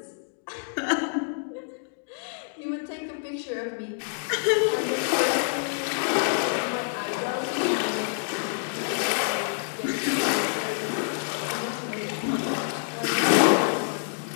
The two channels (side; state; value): right; silent; digital silence